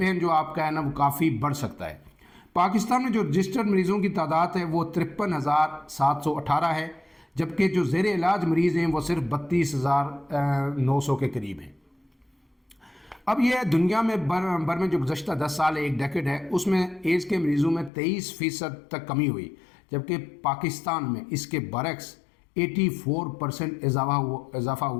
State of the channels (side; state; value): right; drops out; at 17.9 s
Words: جو آپ کا ہے نا وہ کافی بڑھ سکتا ہے. پاکستان میں جو رجسٹرڈ مریضوں کی تعداد ہے وہ 53,718 ہے، جبکہ جو زیر علاج مریض ہیں وہ صرف 32,900 کے قریب ہیں. اب یہ دنیا میں بر میں جو گزشتہ 10 سال ایک ڈیکیڈ ہے اس میں ایڈز کے مریضوں میں 23% تک کمی ہوئی، جبکہ پاکستان میں اس کے برعکس 84% اضافہ